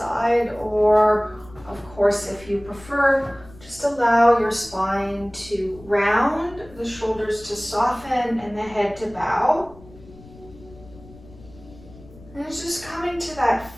or of course, if you prefer, just allow your spine to round, the shoulders to soften, and the head to bow. And it's just coming to that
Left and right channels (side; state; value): left; noise; rumble, 21 dB below the sound